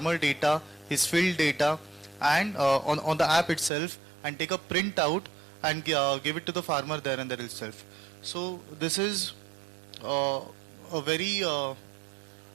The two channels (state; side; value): drops out; left; at 3.7 s